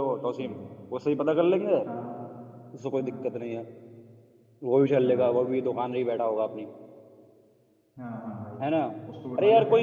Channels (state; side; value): identical; both; correlation 1.00